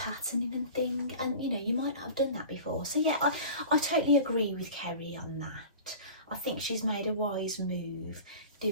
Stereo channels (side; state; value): both; inverted; correlation -0.38